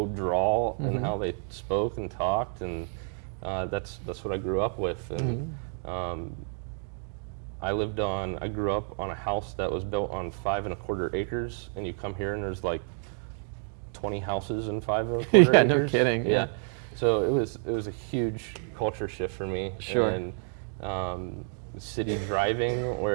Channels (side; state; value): left; silent; 58 dB below the other